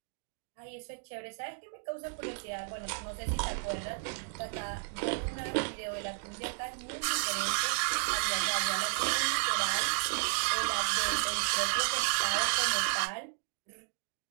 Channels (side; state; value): left; silent; digital silence